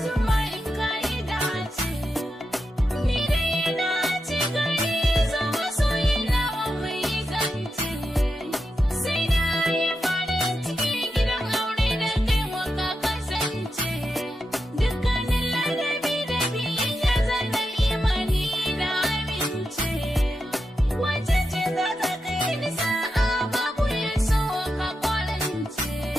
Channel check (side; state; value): both; normal; correlation 0.88